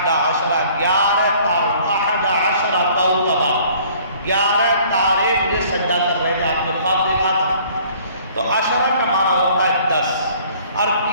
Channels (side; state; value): both; inverted; correlation -0.55